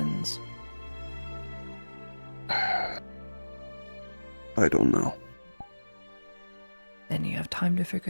I don't know. Then you have time to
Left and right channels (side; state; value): both; inverted; correlation -1.00